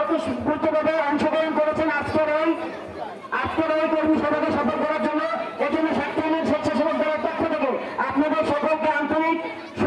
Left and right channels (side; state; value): both; identical; correlation 1.00